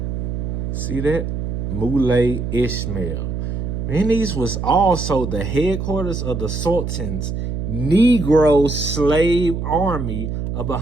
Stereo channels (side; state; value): right; noise; hum, 3 dB below the sound